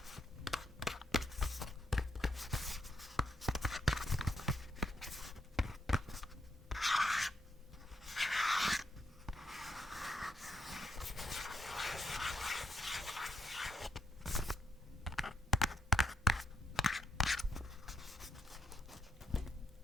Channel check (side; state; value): both; normal; correlation 0.74